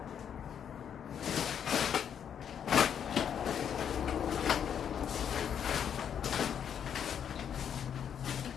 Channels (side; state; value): right; quieter; 8.4 dB